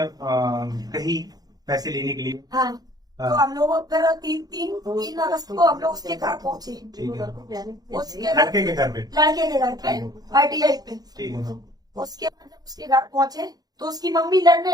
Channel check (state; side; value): late; left; 0.19 ms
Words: कहीं पैसे लेने के लिए? हाँ, तो हम लोग फिर तीन अगस्त को हम लोग उसके घर पहुंचे। ठीक है। उसके लड़के के घर पे? लड़के के घर पे ITI पे। ठीक है। उसके बाद जब उसके घर पहुंचे तो उसकी मम्मी